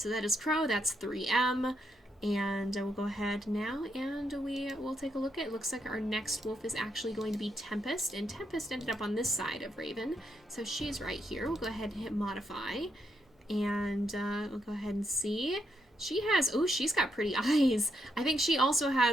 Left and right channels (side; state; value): both; normal; correlation 0.79